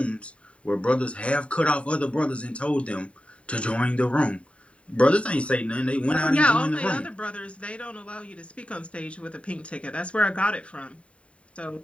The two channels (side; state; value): right; late; 0.062 ms